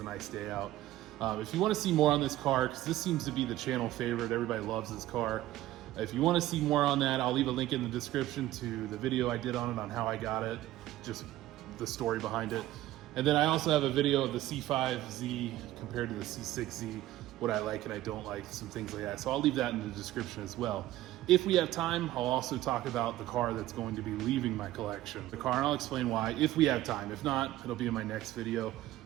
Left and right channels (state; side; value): quieter; left; 15.1 dB